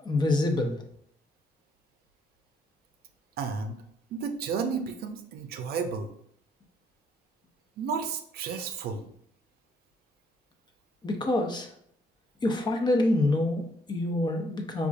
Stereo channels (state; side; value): normal; both; correlation 0.69